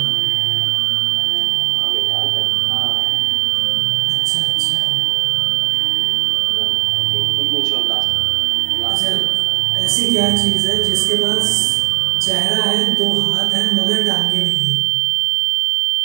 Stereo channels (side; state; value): left; quieter; 28.0 dB